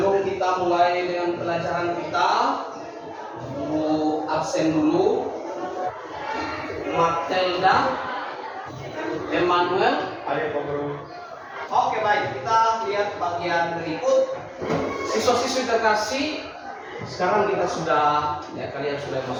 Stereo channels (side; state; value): both; identical; correlation 1.00